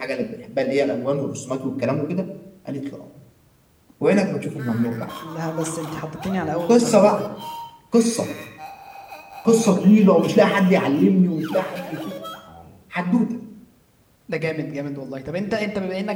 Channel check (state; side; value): identical; both; correlation 1.00